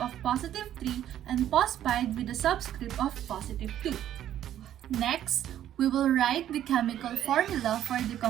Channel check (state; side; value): quieter; left; 11.4 dB